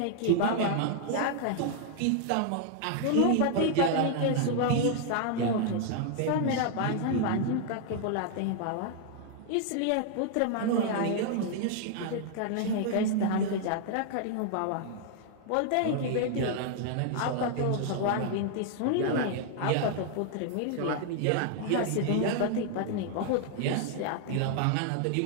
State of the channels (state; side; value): different; both; correlation 0.00